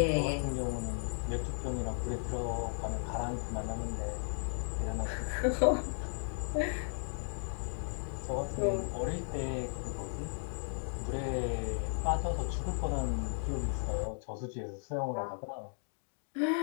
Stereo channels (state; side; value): silent; right; digital silence